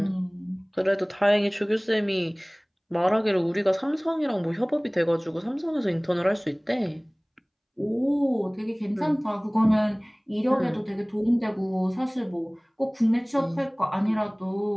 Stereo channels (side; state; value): both; identical; correlation 1.00